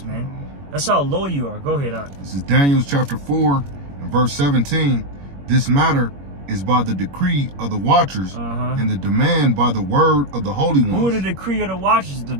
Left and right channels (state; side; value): late; left; 21 ms